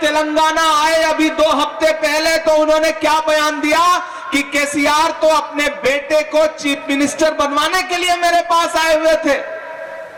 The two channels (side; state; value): both; identical; correlation 1.00